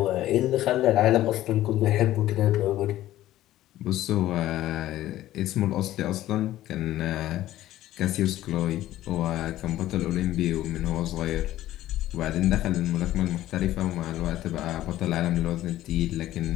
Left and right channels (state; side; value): quieter; right; 14.3 dB